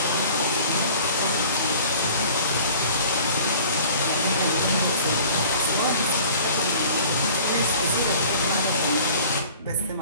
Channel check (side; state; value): both; inverted; correlation -0.47